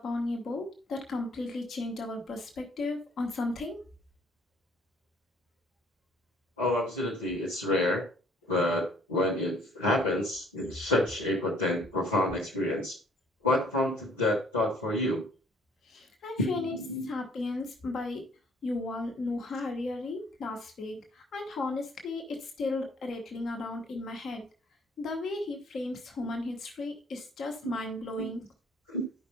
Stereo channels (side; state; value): both; normal; correlation 0.59